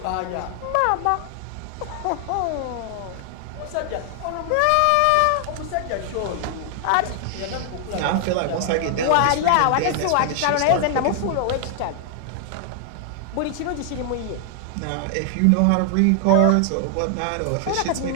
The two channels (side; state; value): both; different; correlation 0.00